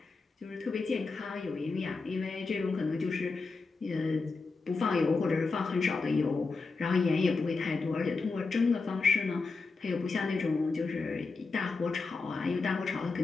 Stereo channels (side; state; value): right; quieter; 4.1 dB